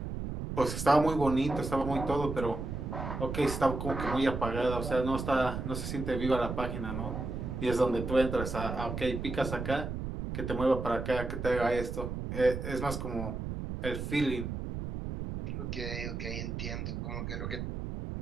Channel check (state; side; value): noise; right; rumble, 5 dB below the sound